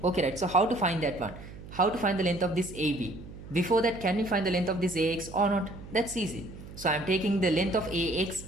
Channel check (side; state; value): right; noise; hum, 15 dB below the sound